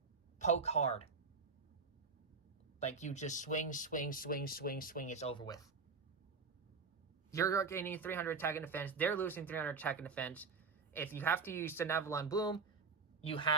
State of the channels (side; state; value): left; quieter; 4.7 dB